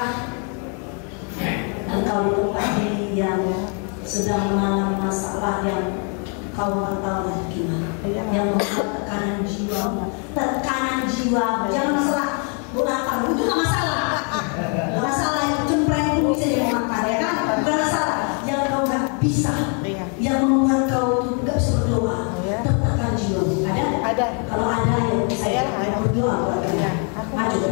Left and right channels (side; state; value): right; quieter; 39.2 dB